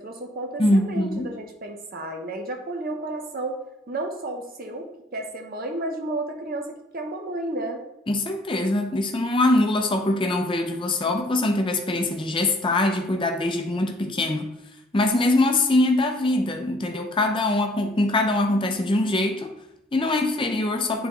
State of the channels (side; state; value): both; normal; correlation 0.60